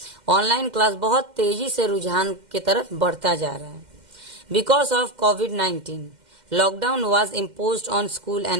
ऑनलाइन क्लास बहुत तेजी से रुझान की तरफ बढ़ता जा रहा है। Because of covid lockdown was imposed on school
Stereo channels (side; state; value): left; late; 2.1 ms